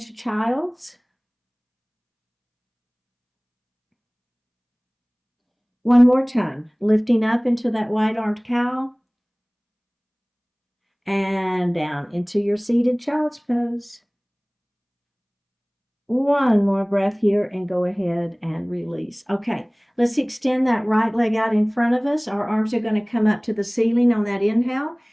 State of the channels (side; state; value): both; identical; correlation 1.00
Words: child's. One more time, lifting up into that wide-armed cow and down into your seated child's pose. One more breath here and go ahead and release. Okay, let's extend that right leg out in front of us. Our arms are going to come up to the ceiling on that inhale.